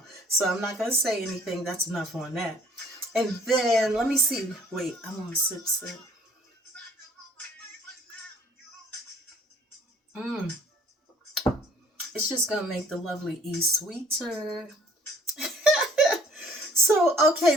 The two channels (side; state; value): both; normal; correlation 0.58